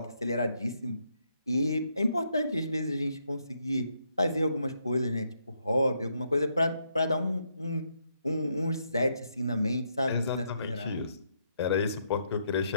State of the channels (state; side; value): inverted; both; correlation -0.77